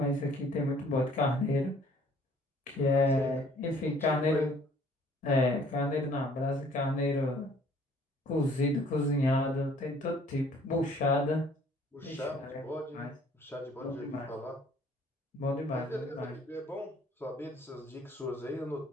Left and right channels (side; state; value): both; normal; correlation 0.57